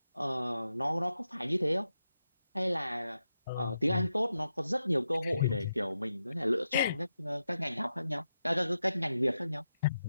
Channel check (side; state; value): both; inverted; correlation -0.87